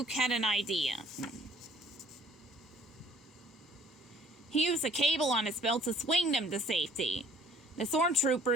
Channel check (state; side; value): normal; both; correlation 0.56